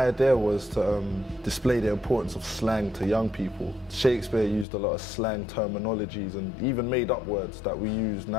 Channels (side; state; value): right; drops out; at 4.7 s